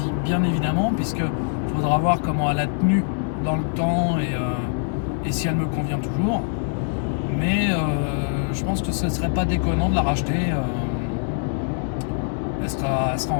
bien évidemment, puisqu'il faudra voir comment elle a tenu dans le temps et si elle me convient toujours. Mais je pense que ce ne serait pas déconnant de la racheter. Elle sera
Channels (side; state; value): right; silent; digital silence